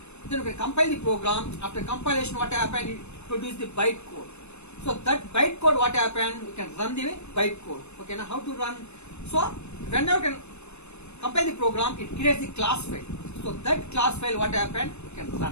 Then you can compile the program. After compilation, what happened? It produce the byte code. So that byte code, what happened? You can run the byte code. Okay, now how to run? So whenever you can compile the program, it creates the class file. So that class file, what happened? You can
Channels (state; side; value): late; right; 0.81 ms